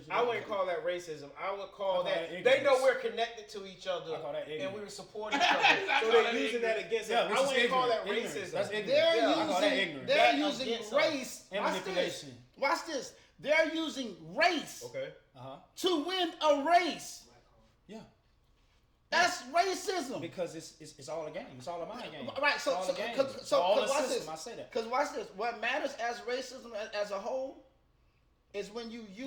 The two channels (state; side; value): identical; both; correlation 1.00